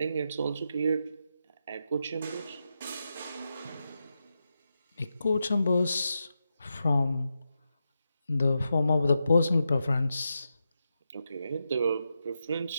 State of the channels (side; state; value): both; inverted; correlation -0.87